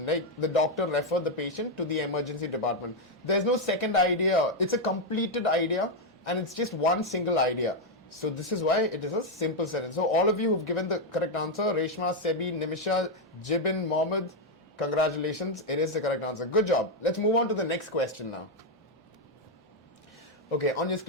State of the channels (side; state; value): both; normal; correlation 0.02